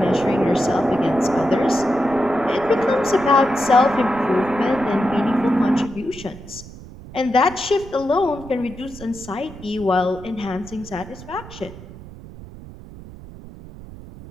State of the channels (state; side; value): noise; right; rumble, 16 dB below the sound